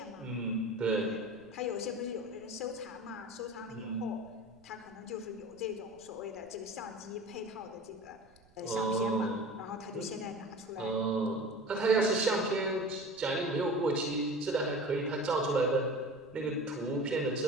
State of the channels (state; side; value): noise; right; rumble, 30 dB below the sound